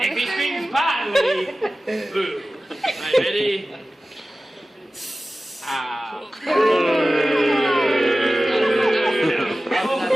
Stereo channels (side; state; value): both; normal; correlation 0.96